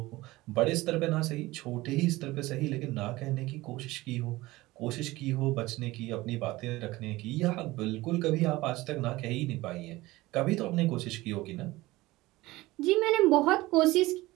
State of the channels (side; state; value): left; quieter; 19.3 dB